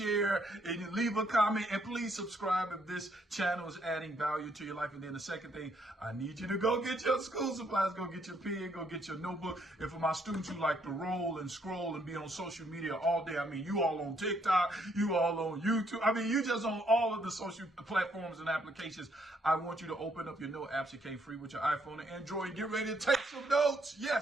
and you leave a comment, and please subscribe if this channel is adding value to your life. And then the second thing, I need you to go get your school supplies, go get your pen, go get your notebook. And for my students who like to roll and scroll and be on social media all day, you all on TikTok, you all on YouTube, you just on all of the social platforms and applications. I want you to open up your note apps. It came free with your iPhone and Android, and get ready to take some notes.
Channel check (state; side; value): normal; both; correlation 0.71